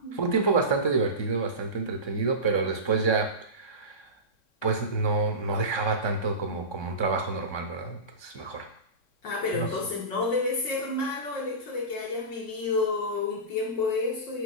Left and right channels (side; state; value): right; late; 3.6 ms